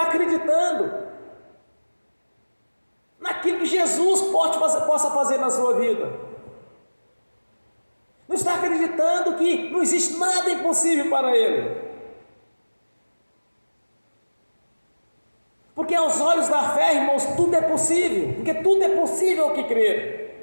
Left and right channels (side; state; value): both; inverted; correlation -1.00